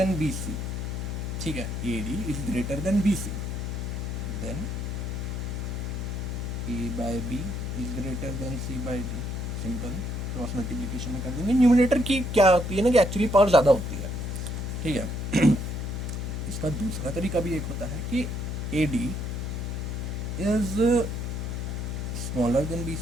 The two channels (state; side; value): noise; left; hum, 3 dB below the sound